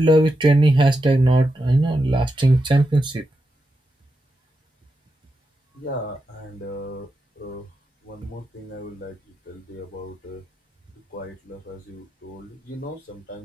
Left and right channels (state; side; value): normal; both; correlation 0.87